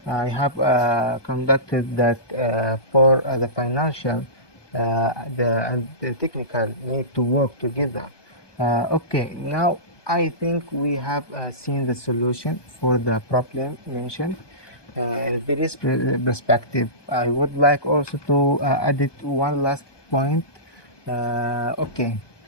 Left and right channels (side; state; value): right; late; 1.2 ms